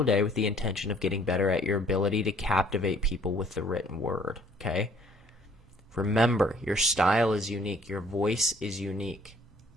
day with the intention of getting better at your ability to captivate people with the written word, okay? Remember, your style is unique. Your voice is unique.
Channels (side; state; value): both; normal; correlation 0.59